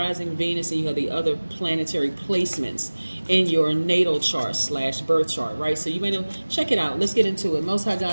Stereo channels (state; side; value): inverted; both; correlation -1.00